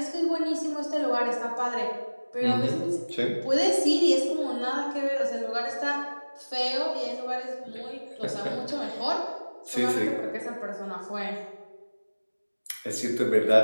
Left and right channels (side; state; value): both; inverted; correlation -1.00